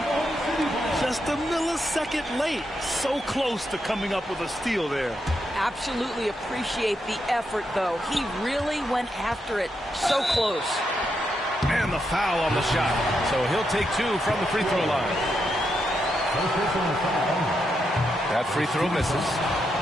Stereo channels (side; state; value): both; normal; correlation 0.82